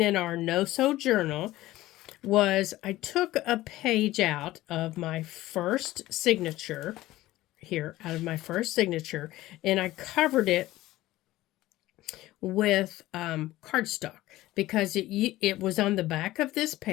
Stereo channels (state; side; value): quieter; right; 16.6 dB